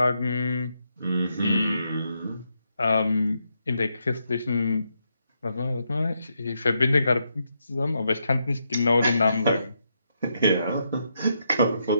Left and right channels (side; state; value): both; inverted; correlation -0.80